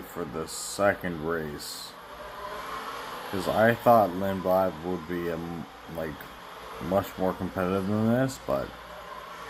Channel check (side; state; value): both; identical; correlation 1.00